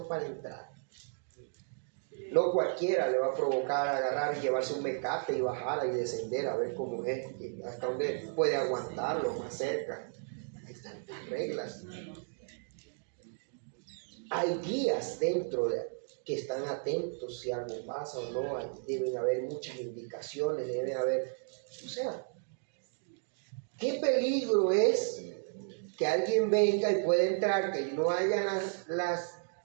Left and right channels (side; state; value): left; silent; digital silence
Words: para entrar, no cualquiera le va a provocar agarrar y llevarse un mecate y bajarla y descender a ver cómo es, hasta dónde puede aguantarlo, más cerca. Hay tantas reglas. Hay guías dentro que están atentos si algo pasa o no. Deben haber muchas indicaciones, deben haber, o sea, ¿qué peligro es que alguien venga y pueda entrar, que no haya